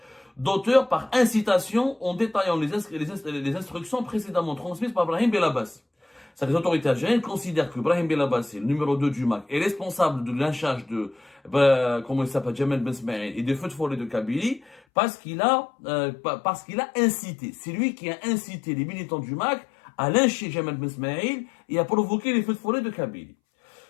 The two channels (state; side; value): drops out; right; at 14.8 s